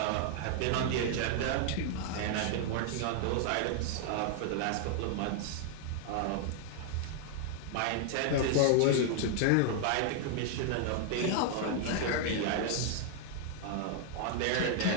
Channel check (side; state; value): both; different; correlation 0.00